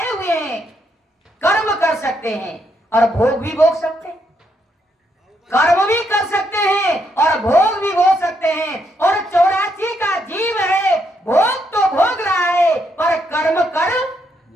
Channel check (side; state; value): both; normal; correlation 0.76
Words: हुए हैं, कर्म कर सकते हैं और भोग भी भोग सकते हैं। कर्म भी कर सकते हैं और भोग भी भोग सकते हैं। और 84 का जीव है, भोग तो भोग रहा है पर कर्म कर